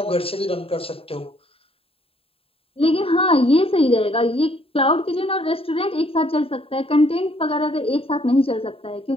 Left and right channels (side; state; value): right; late; 0.27 ms